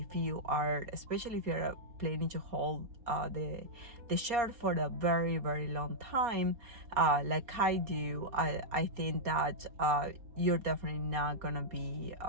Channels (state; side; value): late; left; 4.3 ms